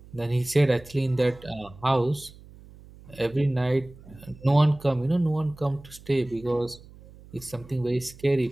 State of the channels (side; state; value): right; noise; hum, 21 dB below the sound